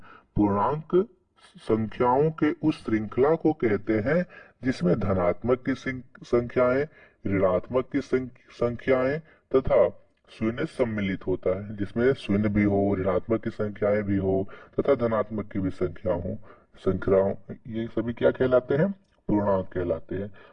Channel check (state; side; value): identical; both; correlation 1.00